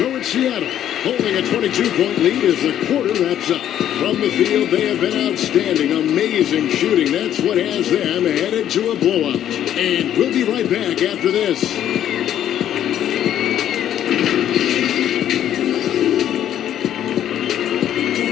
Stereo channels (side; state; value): right; quieter; 10.9 dB